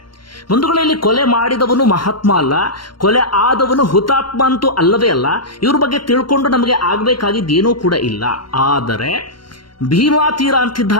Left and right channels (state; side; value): late; right; 0.72 ms